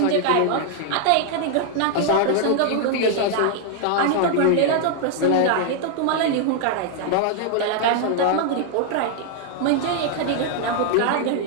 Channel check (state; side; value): different; both; correlation 0.00